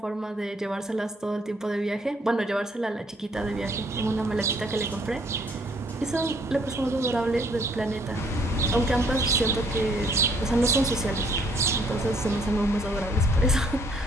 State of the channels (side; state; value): both; normal; correlation 0.64